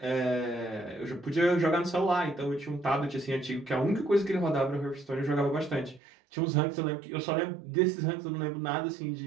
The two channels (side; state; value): left; drops out; at 6.0 s